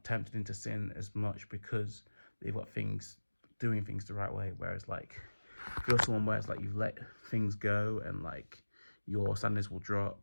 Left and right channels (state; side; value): inverted; both; correlation -1.00